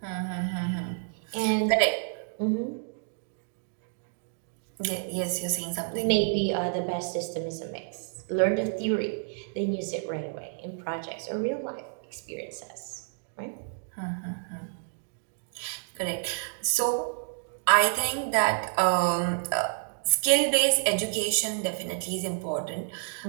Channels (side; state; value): left; silent; digital silence